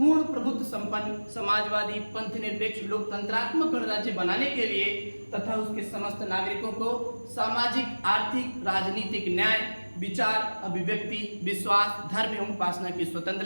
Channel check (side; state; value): both; inverted; correlation -1.00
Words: प्रभुत्व संपन्न समाजवादी पंथ निरपेक्ष लोकतंत्रात्मक गणराज्य बनाने के लिए तथा उसके समस्त नागरिकों को सामाजिक आर्थिक राजनीतिक न्याय विचार अभिव्यक्ति विश्वास धर्म एवं उपासना की